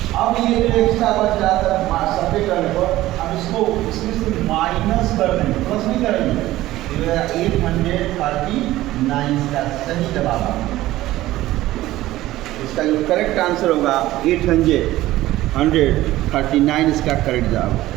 अब ये जो एक्स्ट्रा बच रहा था सब्जेक्ट करने पर, अब इसको इसमें से माइनस कर देंगे, प्लस नहीं करेंगे। 839 का सही जवाब है। इसका जो करेक्ट आंसर होगा 839 इसका करेक्ट जवाब।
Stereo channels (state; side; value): quieter; left; 16.0 dB